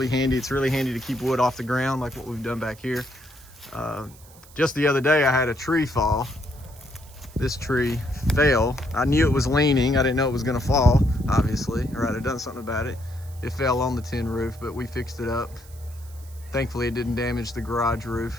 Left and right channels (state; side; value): noise; right; hiss, 23 dB below the sound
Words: handy. It's really handy to keep wood off the ground like what we've done back here. Just the other day I had a tree fall. This tree fell. I knew it was leaning. I didn't know it was gonna fall, obviously, or I'd have done something about it. It fell on the tin roof, but we fixed it up. Thankfully it didn't damage the garage